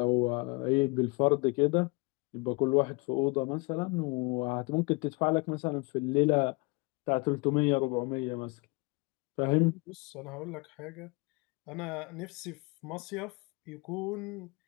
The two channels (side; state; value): right; quieter; 27.7 dB